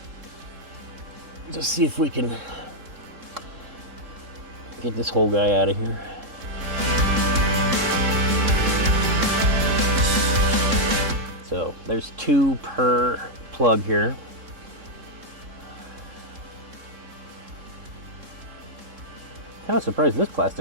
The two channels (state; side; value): late; left; 3.7 ms